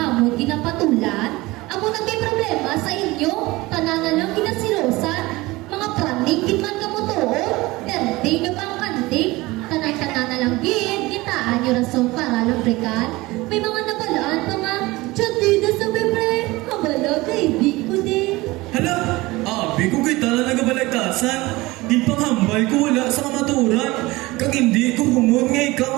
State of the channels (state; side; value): quieter; left; 20.7 dB